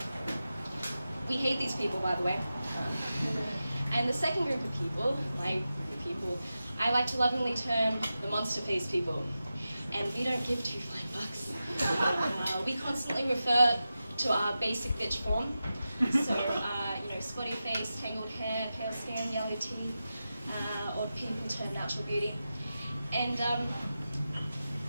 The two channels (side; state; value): both; inverted; correlation -0.92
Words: We hate these people, by the way. And the second group of people, my group of people, I like to lovingly term the monster-faced people. And we don't give two flying bucks. We constantly refer to our basic bitch form. So, you know, spotty face, tangled hair, pale skin, yellow teeth, odd pimple turned natural beauty. And